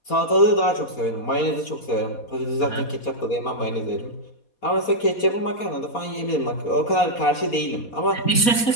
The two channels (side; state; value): right; late; 4.2 ms